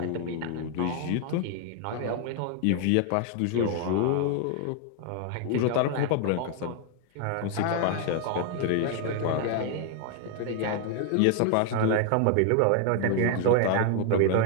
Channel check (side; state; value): both; different; correlation 0.00